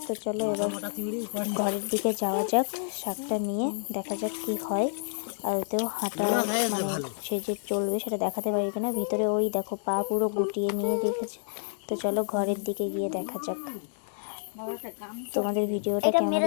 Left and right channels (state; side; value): silent; right; 59 dB below the other